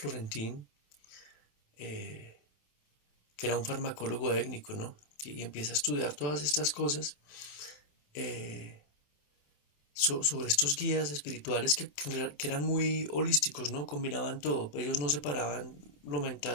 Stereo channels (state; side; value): late; right; 27 ms